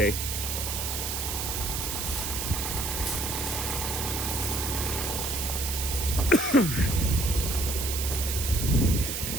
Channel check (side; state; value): right; noise; hiss, 3 dB below the sound